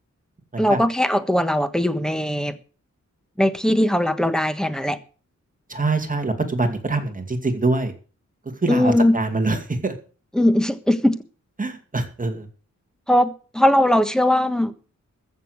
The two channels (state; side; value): normal; both; correlation 0.87